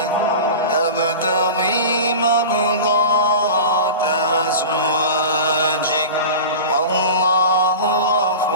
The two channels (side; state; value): both; inverted; correlation -0.32